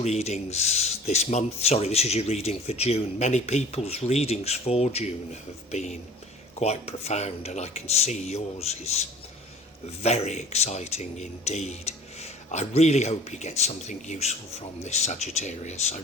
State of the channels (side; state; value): both; normal; correlation 0.46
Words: this month, this is your reading for June, many people's readings for June have been quite profound, and I can see yours is very exciting indeed. I really hope you get something useful from this, Sagittarius. I